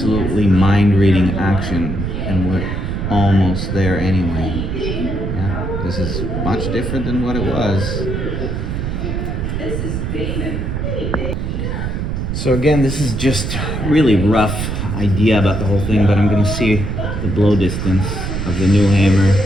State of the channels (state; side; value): noise; right; rumble, 3 dB below the sound